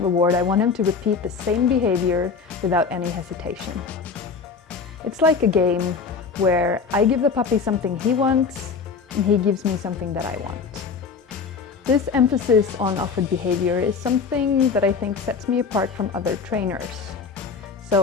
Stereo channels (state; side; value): quieter; right; 5.3 dB